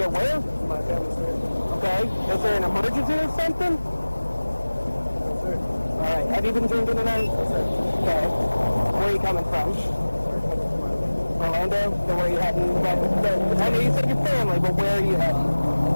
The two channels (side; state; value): both; inverted; correlation -1.00